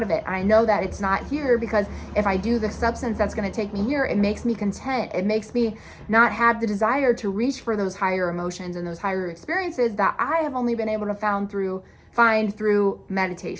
of it. And I know that it's not here, because if I do the substance that's going to take me here, it makes me content. It makes me not have the desire to reach for those higher emotions and those higher experiences that I have only been able to find through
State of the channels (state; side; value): identical; both; correlation 1.00